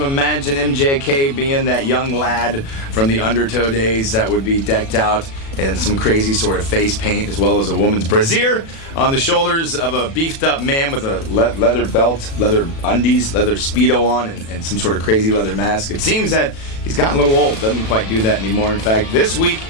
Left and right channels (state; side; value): late; right; 36 ms